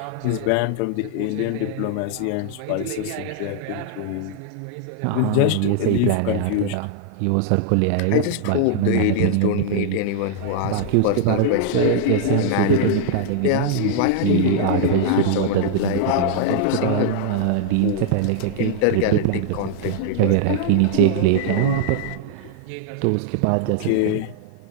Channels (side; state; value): both; different; correlation -0.01